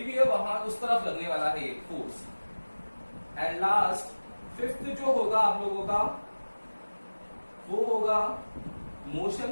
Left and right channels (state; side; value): inverted; both; correlation -1.00